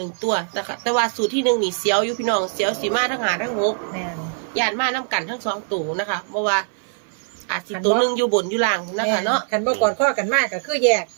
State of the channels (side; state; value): left; silent; 58 dB below the other